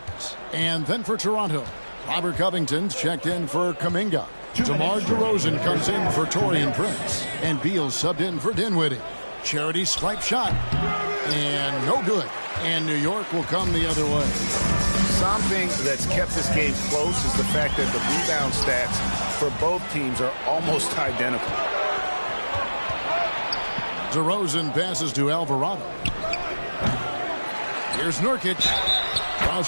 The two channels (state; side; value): inverted; both; correlation -1.00